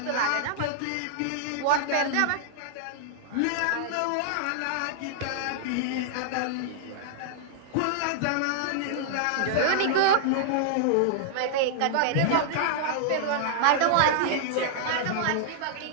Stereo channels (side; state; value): both; different; correlation -0.01